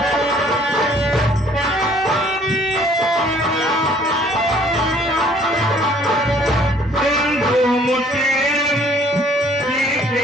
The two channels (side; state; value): both; normal; correlation 0.58